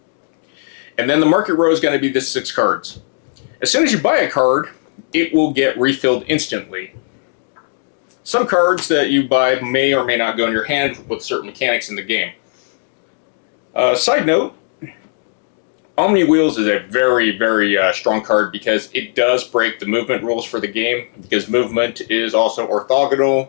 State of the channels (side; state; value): right; silent; digital silence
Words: And then the market row is going to be the 6 cards. As soon as you buy a card, it will get refilled instantly. Some cards that you buy may or may not go in your hand with certain mechanics in the game. Side note, Omni Wheels is a very, very strong card because it does break the movement rules for the game, because movement is also